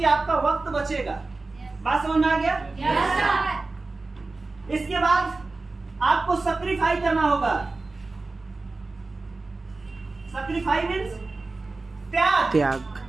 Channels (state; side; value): quieter; left; 3.5 dB